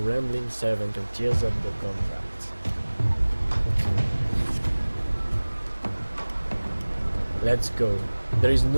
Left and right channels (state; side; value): inverted; both; correlation -1.00